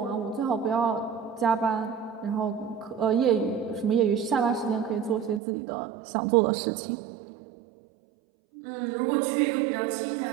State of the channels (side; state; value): left; drops out; at 5.4 s